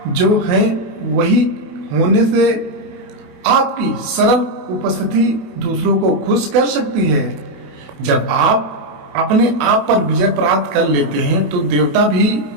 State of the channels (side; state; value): left; late; 28 ms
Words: जो हैं वही होने से आपकी सरल उपस्थिति दूसरों को खुश कर सकती है। जब आप अपने आप पर विजय प्राप्त कर लेते हैं तो देवता भी